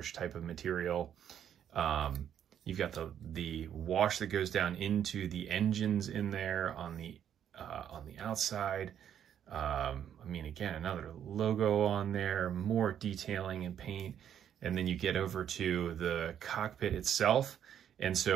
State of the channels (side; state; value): left; quieter; 9.5 dB